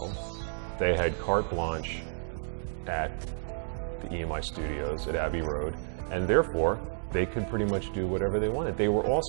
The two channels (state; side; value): silent; left; digital silence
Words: They had carte blanche at the EMI studios at Abbey Road, and therefore they could pretty much do whatever they wanted. They were